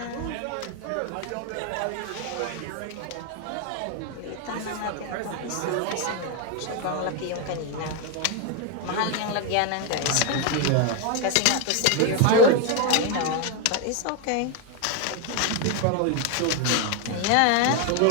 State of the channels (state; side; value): different; both; correlation 0.01